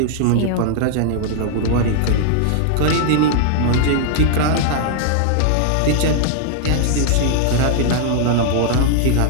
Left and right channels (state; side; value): different; both; correlation 0.00